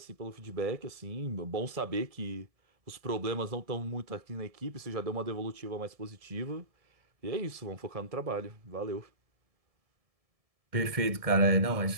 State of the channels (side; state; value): left; late; 1.7 ms